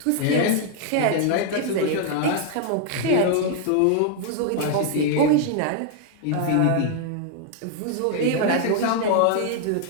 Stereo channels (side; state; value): both; different; correlation 0.00